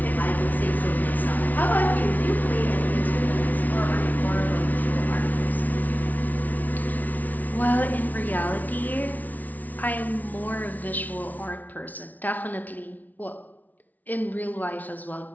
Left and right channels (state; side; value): late; right; 0.077 ms